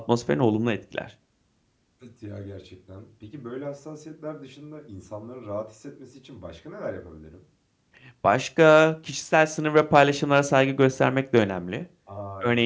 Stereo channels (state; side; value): identical; both; correlation 1.00